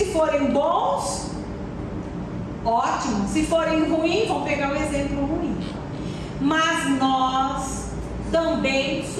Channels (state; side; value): identical; both; correlation 1.00